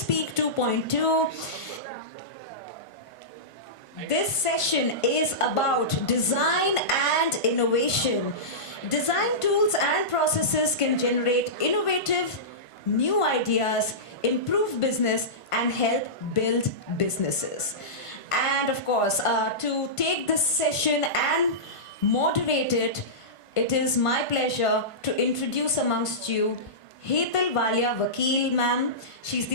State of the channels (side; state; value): right; late; 1.5 ms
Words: 2.2. This session is about design and innovation. Design tools and processes can generate innovative, new ideas, improve business, and help build businesses. And of course, to take this session and moderate it, it is my pleasure to introduce amongst you Hetal Walia Vakil ma'am. She's